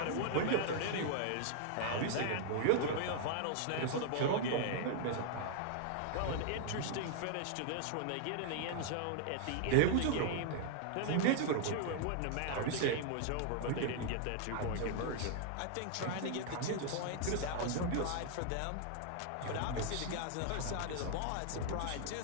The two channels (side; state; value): both; different; correlation -0.01